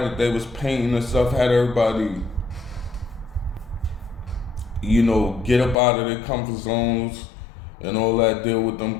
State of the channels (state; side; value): drops out; right; at 5.8 s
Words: that they was painting and stuff. Had everybody, you know, get up out of their comfort zones and all that, deal with them